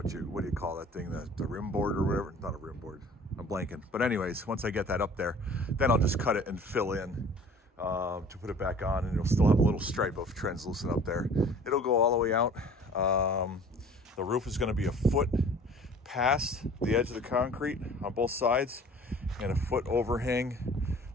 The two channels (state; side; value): normal; both; correlation 0.48